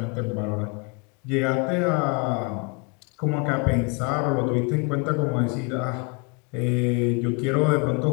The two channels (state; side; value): quieter; right; 32.1 dB